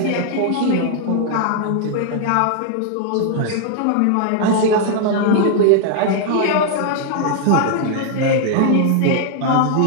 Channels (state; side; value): different; both; correlation 0.00